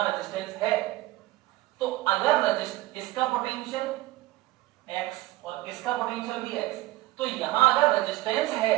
रेजिस्टेंस है। तो अगर इसका पोटेंशियल x और इसका पोटेंशियल भी x, तो यहां अगर रेजिस्टेंस है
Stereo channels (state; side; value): quieter; left; 18.2 dB